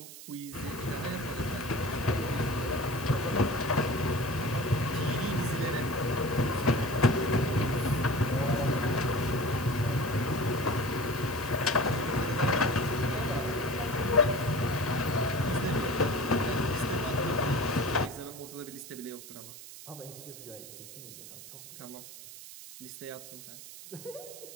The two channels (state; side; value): noise; right; hiss, 14 dB below the sound